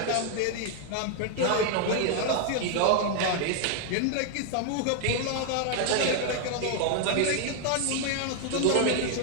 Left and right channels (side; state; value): both; different; correlation 0.00